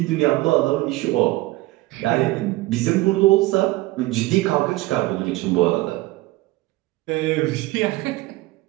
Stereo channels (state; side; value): quieter; left; 19.2 dB